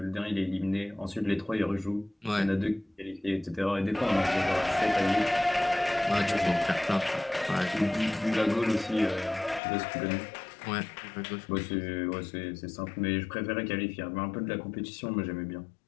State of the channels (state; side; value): drops out; right; at 9.6 s